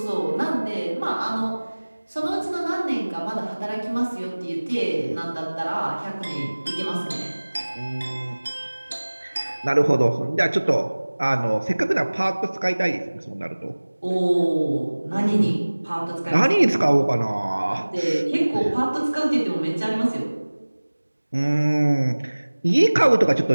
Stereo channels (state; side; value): inverted; both; correlation -1.00